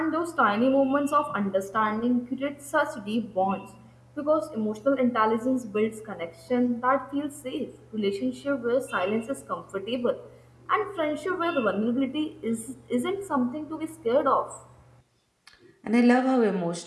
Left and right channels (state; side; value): identical; both; correlation 1.00